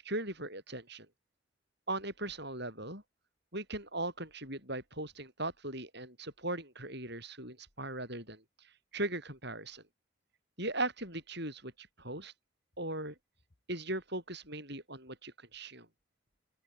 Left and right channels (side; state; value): both; normal; correlation -0.16